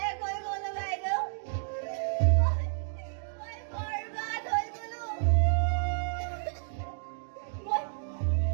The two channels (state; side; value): silent; left; digital silence